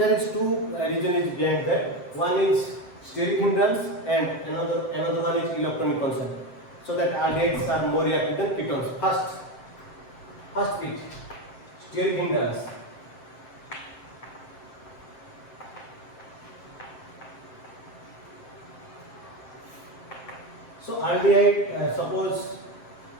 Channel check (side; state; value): right; late; 7.7 ms